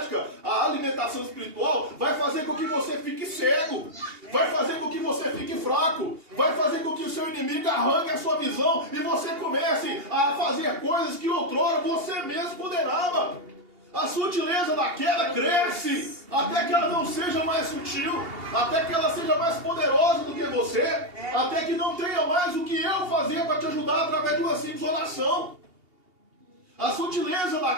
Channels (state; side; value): late; left; 2.8 ms